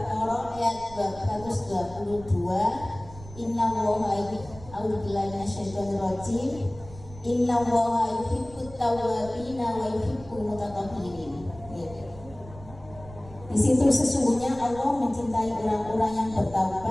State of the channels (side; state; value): right; noise; rumble, 17 dB below the sound